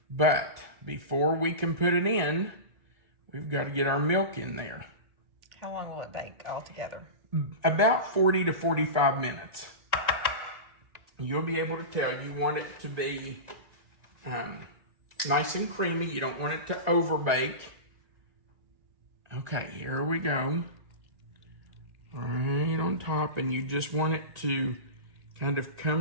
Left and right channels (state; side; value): late; left; 1.8 ms